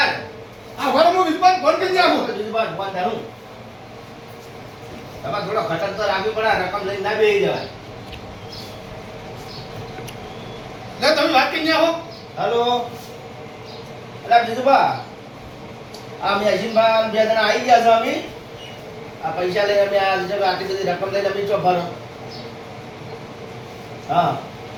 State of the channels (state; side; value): identical; both; correlation 1.00